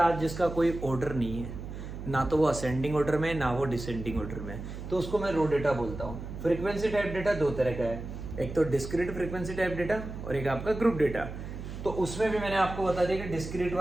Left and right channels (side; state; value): right; noise; hum, 9 dB below the sound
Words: जिसका कोई ऑर्डर नहीं है, ना तो वो असेंडिंग ऑर्डर में ना वो डिसेंडिंग ऑर्डर में, तो उसको मैं रो डेटा बोलता हूँ। फ्रीक्वेंसी टाइप डेटा दो तरह का है, एक तो डिस्क्रीट फ्रीक्वेंसी टाइप डेटा और एक आपका ग्रुप डेटा। तो उसमें भी मैंने आपको बता दिया कि डिस्क्रीट